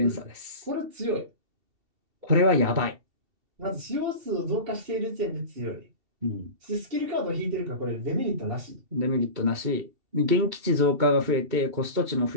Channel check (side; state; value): left; late; 2.7 ms